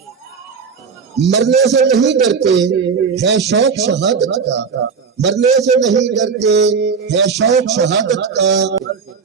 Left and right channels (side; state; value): left; quieter; 5.7 dB